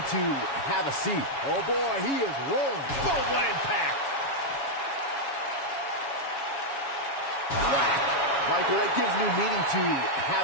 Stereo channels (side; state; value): right; late; 7.2 ms